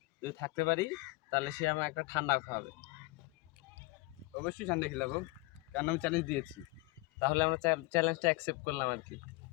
যদি থাকতে পারি তাহলে সে আমার একটা ঠান্ডা খাওয়াবে। অবশ্যই ঠান্ডা খেলাবো, কারণ আমি চ্যালেঞ্জ দিয়েছি। তাহলে আমরা চ্যালেঞ্জটা অ্যাকসেপ্ট করলাম আর কি।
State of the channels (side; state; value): right; quieter; 22.9 dB